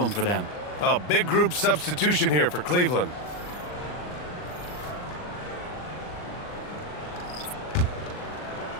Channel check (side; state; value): right; late; 39 ms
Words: for them. A big group substitution here for Cleveland.